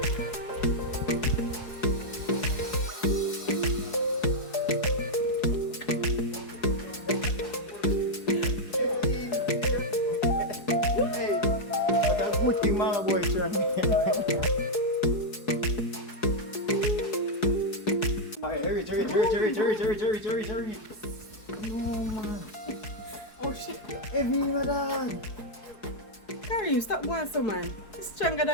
Hey, what a good thing, my boy, Sean. Hurry. No, man. Oh shit. Heavy, my dad. Karim, stop going so man. It's stronger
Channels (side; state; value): right; late; 4.7 ms